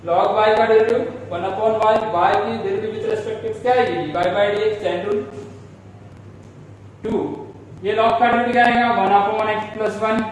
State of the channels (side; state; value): both; identical; correlation 1.00